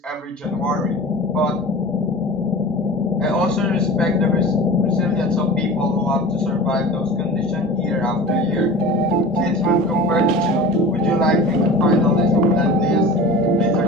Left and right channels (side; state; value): both; normal; correlation 0.36